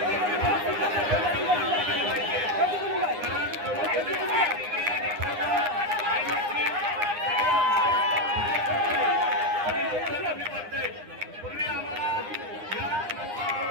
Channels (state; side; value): late; left; 9.8 ms